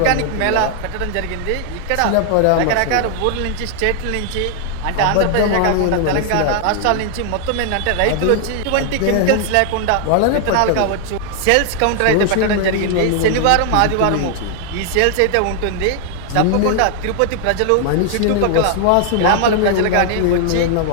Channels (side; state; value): both; different; correlation 0.00